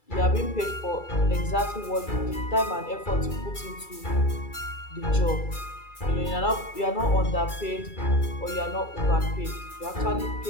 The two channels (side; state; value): right; late; 2.3 ms